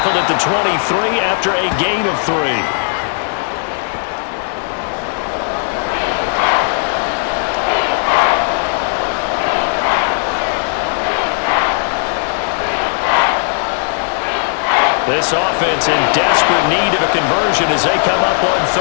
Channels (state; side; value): silent; right; digital silence